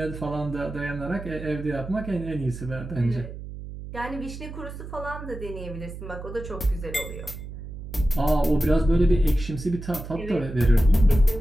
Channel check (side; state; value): right; noise; hum, 11 dB below the sound